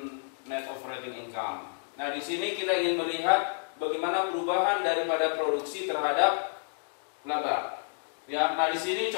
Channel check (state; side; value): silent; right; digital silence